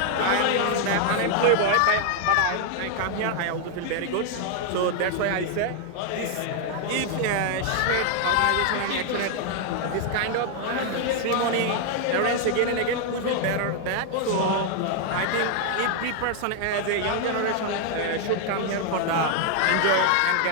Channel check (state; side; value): different; both; correlation 0.00